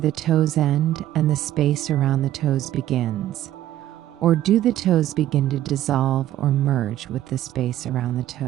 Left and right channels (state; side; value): quieter; left; 13.0 dB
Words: toes end and the space around the toes begins. Or do the toes begin to dissolve or merge with the space around the